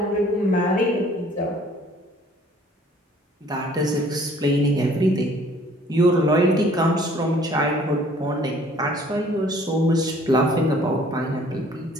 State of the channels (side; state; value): both; normal; correlation 0.56